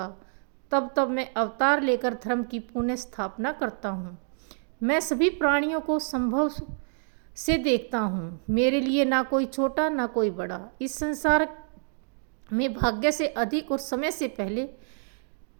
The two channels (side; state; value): left; silent; digital silence